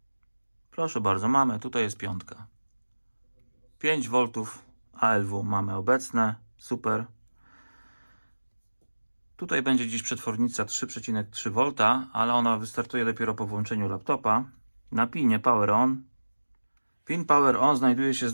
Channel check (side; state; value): both; inverted; correlation -1.00